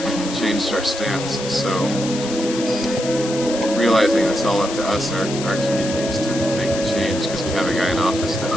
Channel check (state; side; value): noise; left; hiss, 9 dB below the sound